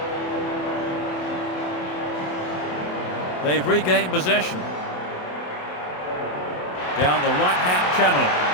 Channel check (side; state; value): right; late; 27 ms